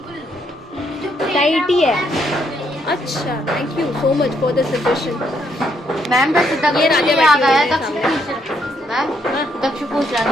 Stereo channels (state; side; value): normal; both; correlation 0.74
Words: टाइट ही है. अच्छा, thank you so much for the suggestion. Ma'am वैसे तक ये राजा ये आ बैठी हुई गया है दक्ष सामने. पूछ मैम दक्ष पूछ रहा था